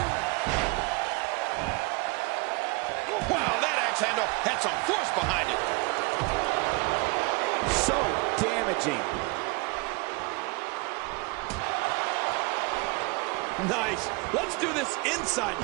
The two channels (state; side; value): quieter; left; 27.6 dB